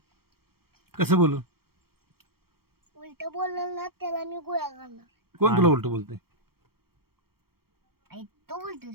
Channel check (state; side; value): late; left; 0.95 ms